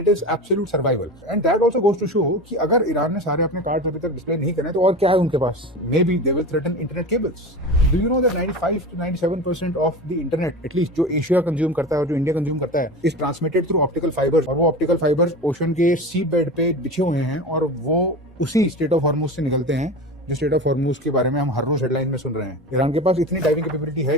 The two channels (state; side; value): normal; both; correlation 0.29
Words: is absolute survival. And that also goes to show कि अगर ईरान ने सारे अपने कार्ड्स अभी तक डिस्प्ले नहीं करे तो और क्या है उनके पास. May be they will threaten internet cables. Do you know that 95 to 97% of the internet at least जो एशिया कंज्यूम करता है और जो इंडिया कंज्यूम करता है is transmitted through optical fibres. और वो ऑप्टिकल फाइबर्स ओशन के सी बेड पे बिछे हुए हैं और वो उसी स्टेट ऑफ हॉर्मुज से निकलते हैं जो स्टेट ऑफ हॉर्मुज के बारे में हम हर रोज हेडलाइन में सुन रहे हैं. ईरान के पास इतनी डाइविंग कैपेबिलिटी